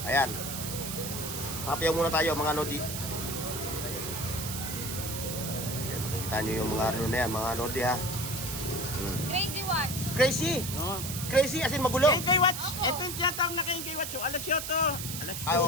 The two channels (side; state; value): right; noise; hiss, 6 dB below the sound